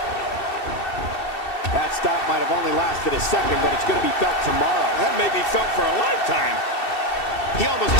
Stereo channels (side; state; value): right; late; 2.7 ms